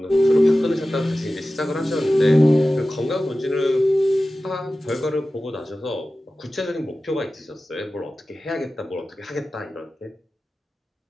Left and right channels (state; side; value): normal; both; correlation 0.95